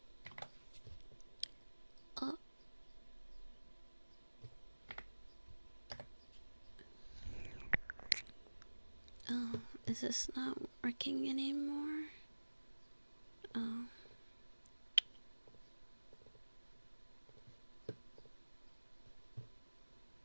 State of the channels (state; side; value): inverted; both; correlation -1.00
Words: Oh, is this not working anymore? Oh.